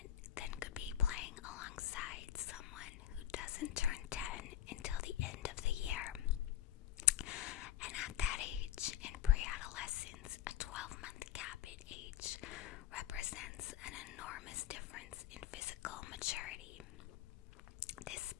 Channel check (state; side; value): quieter; right; 11.4 dB